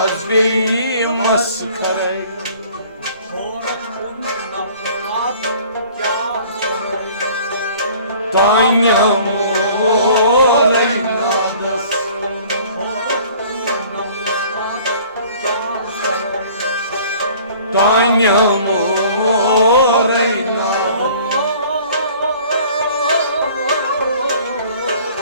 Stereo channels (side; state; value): both; inverted; correlation -0.51